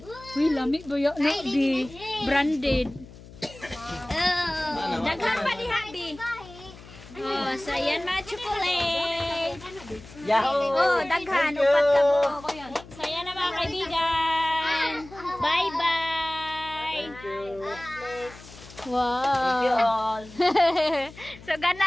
Uy, lami ba yan? No, di. Branded. Daghan pa ni Habi. Oh, so yan mga chocolate. Yahoo! Oh, daghan. Upat ka po. So yan Thank you. Wow. You all. So,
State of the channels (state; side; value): noise; left; hum, 19 dB below the sound